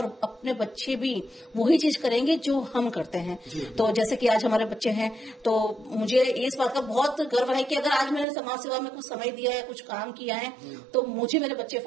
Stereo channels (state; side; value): drops out; left; at 8.2 s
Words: अपने बच्चे भी वही चीज करेंगे जो हम करते हैं। तो जैसे कि आज हमारे बच्चे हैं, तो मुझे इस बात का बहुत गर्व है कि अगर आज मैंने समाज सेवा में कुछ समय दिया है, कुछ काम किया है, तो मुझे मेरे बच्चे